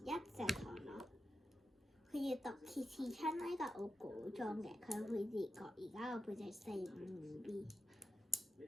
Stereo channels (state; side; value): normal; both; correlation 0.90